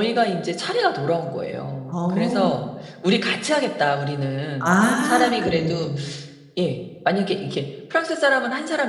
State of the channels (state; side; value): identical; both; correlation 1.00